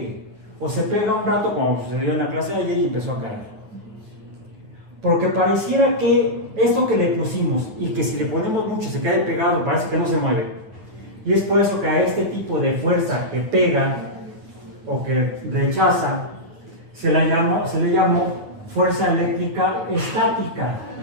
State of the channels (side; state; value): left; late; 9.5 ms